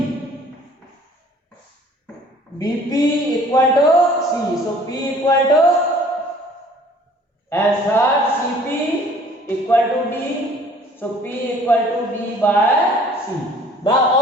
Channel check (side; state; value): both; normal; correlation 0.53